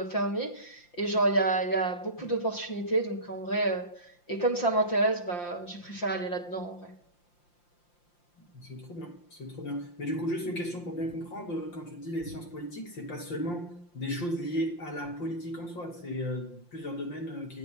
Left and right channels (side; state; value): right; late; 5.7 ms